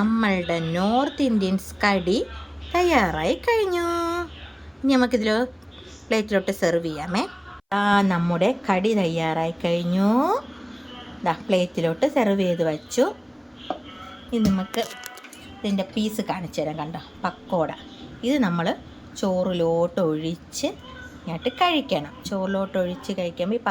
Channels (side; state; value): both; identical; correlation 1.00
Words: നോർത്ത് ഇന്ത്യൻസ് കടി തയ്യാറായി കഴിഞ്ഞു. ഇനി നമുക്കിതിൽ പ്ലേറ്റിലോട്ട് സെർവ് ചെയ്യാമേ. നമ്മുടെ കടി തയ്യാറായി കഴിഞ്ഞു. പ്ലേറ്റിലോട്ട് സെർവ് ചെയ്ത് വച്ചു. ഇനി നമുക്ക് ഇതിൻ്റെ പീസ് കാണിച്ചു തരാം. കണ്ടോ, പക്കോട. ഇത് നമ്മൾ ചോറിലോട്ട് ഒഴിച്ച് ഇങ്ങോട്ട് കഴിക്കണം. ചോറിലോട്ട് ഒഴിച്ച് കഴിക്കുമ്പോൾ ഈ